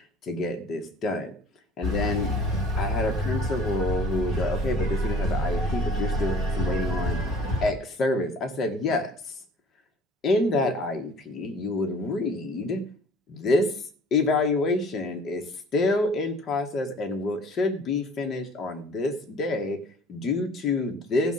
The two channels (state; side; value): normal; both; correlation 0.50